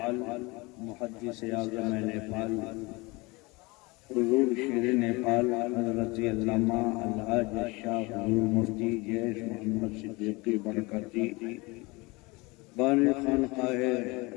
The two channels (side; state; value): right; quieter; 24.8 dB